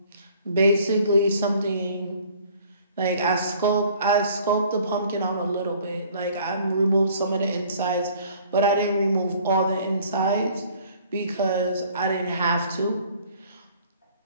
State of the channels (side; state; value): both; inverted; correlation -0.55